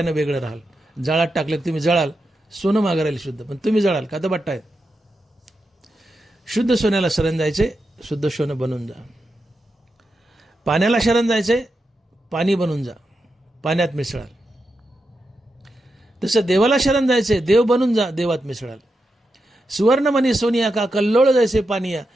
वेगळं राहाल. जाळात टाकले तुम्ही जळाल, सोनं मागं राहील शुद्ध, पण तुम्ही जळाल का? तर बट्टा आहे. शुद्ध सोन्याला शरण जायचे, शुद्ध सोनं बनून जा. पाण्याला शरण जायचे, पाणी बनून जा, पाण्यात मिसळाल. तसं देवाला शरण जायचे, देव बनून जा, देवात मिसळाल. सुवर्णमणी सोनिया का कल्लोळ जैसे पानिया,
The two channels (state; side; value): normal; both; correlation 0.87